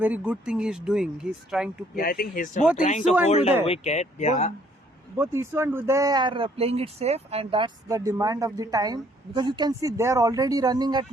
good thing he's doing. He's trying to play. Yeah, I think he's Both trying Isu to and hold a Uday. wicket. Yeah. Both Isu and Uday are playing it safe, and that's the demand of the time, because you can see they are already running at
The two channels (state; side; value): normal; both; correlation 0.63